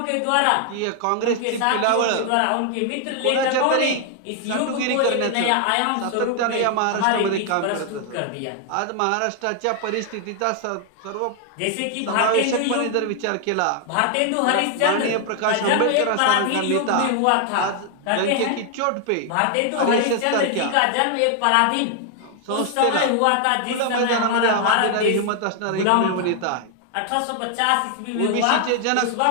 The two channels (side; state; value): both; different; correlation 0.00